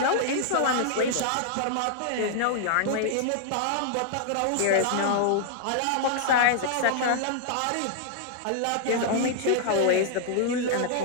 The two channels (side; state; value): both; different; correlation -0.01